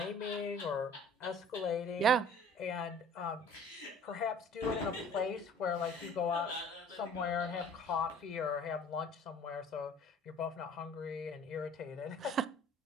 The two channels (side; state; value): both; normal; correlation 0.49